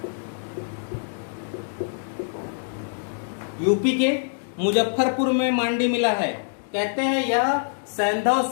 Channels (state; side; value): silent; right; digital silence